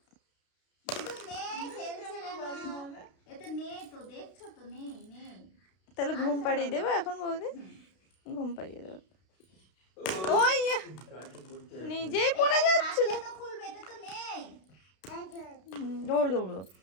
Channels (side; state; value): right; late; 32 ms